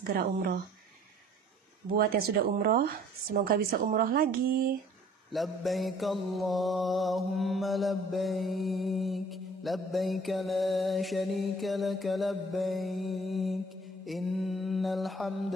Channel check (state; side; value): normal; both; correlation 0.53